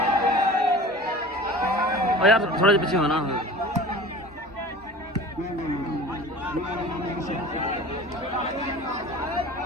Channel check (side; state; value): both; normal; correlation 0.40